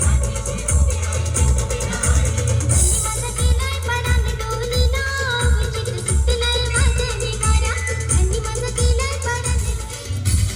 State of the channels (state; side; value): identical; both; correlation 1.00